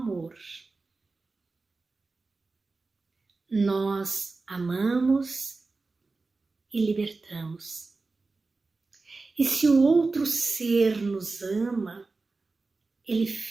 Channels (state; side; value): quieter; left; 3.8 dB